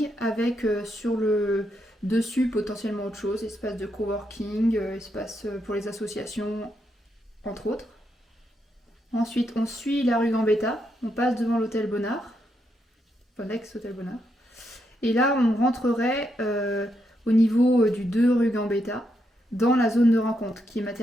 avec sur le dessus potentiellement autre chose, espace de coworking, espace pour les associations entre autres. Ensuite, on suit la rue Gambetta, on passe devant l'hôtel Bonnard, enfin l'ex-hôtel Bonnard. Et là, on rentrerait au niveau du 2 rue Gambetta, dans la zone de rencontre, qui est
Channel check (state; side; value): normal; both; correlation 0.80